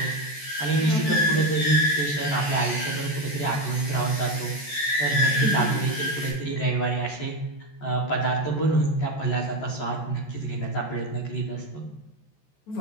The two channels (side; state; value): right; late; 14 ms